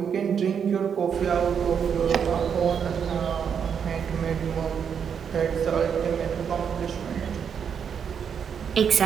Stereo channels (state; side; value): quieter; left; 7.4 dB